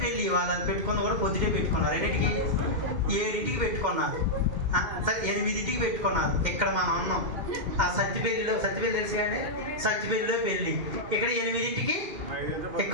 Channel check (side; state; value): left; late; 2.1 ms